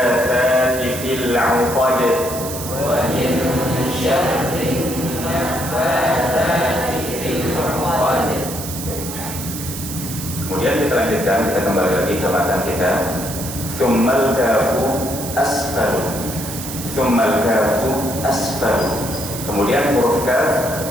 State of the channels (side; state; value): right; noise; hiss, 8 dB below the sound